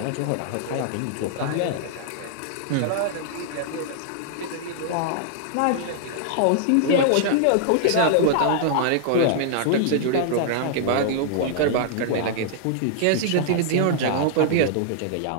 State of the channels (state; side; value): different; both; correlation -0.01